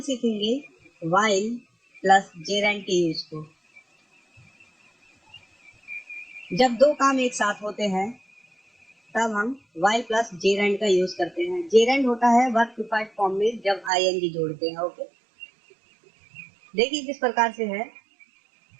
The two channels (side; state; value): left; drops out; at 13.9 s